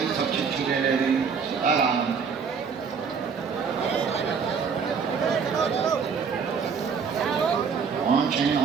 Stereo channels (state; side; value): quieter; left; 6.0 dB